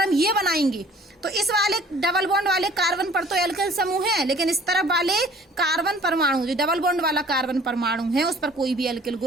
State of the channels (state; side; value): normal; both; correlation 0.52